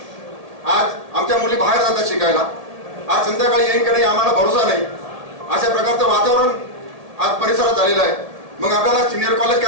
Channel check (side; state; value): left; late; 1.8 ms